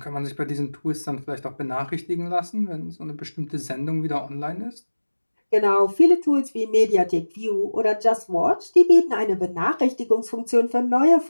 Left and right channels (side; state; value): both; inverted; correlation -1.00